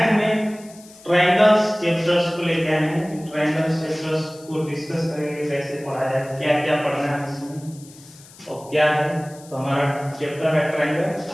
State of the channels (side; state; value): left; noise; hiss, 22 dB below the sound